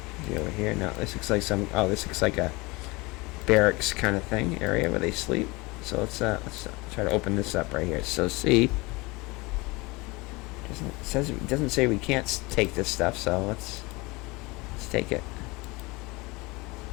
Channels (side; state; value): right; quieter; 24.2 dB